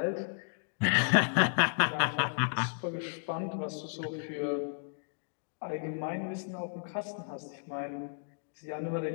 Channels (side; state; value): right; silent; digital silence